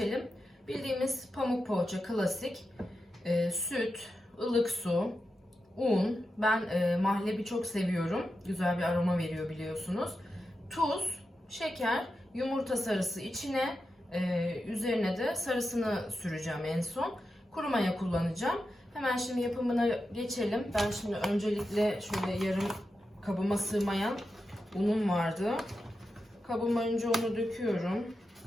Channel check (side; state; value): both; normal; correlation 0.89